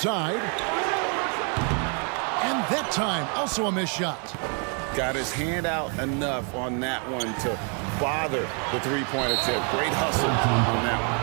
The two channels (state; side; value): quieter; left; 38.2 dB